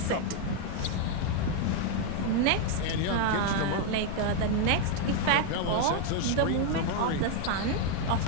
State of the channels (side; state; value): both; different; correlation 0.00